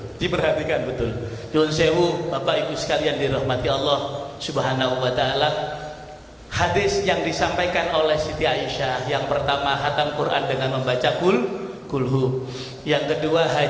Nyuwun sewu Bapak Ibu sekalian dirahmati Allah Subhanahu wa Ta'ala. Hadis yang disampaikan oleh Siti Aisyah, yang pertama khatam Quran dengan membaca kulhu, yang kedua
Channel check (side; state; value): both; identical; correlation 1.00